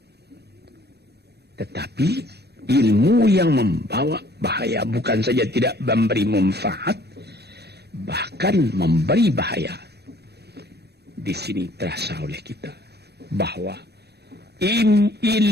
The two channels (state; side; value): late; left; 0.48 ms